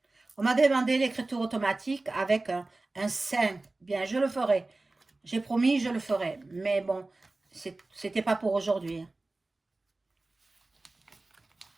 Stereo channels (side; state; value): left; quieter; 3.1 dB